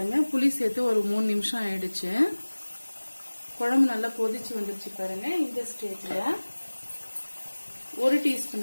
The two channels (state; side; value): inverted; both; correlation -1.00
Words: புளி சேர்த்து ஒரு 3 நிமிஷம் ஆயிடுச்சு. குழம்பு நல்லா கொதிச்சு வந்துருச்சு பாருங்க. இந்த ஸ்டேஜ்ல 1